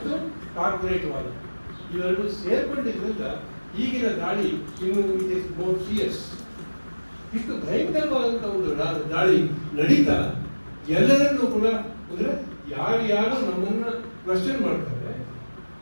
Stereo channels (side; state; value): both; inverted; correlation -1.00